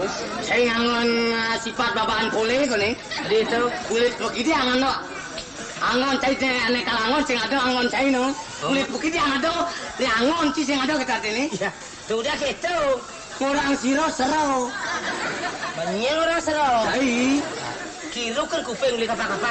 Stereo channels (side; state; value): both; identical; correlation 1.00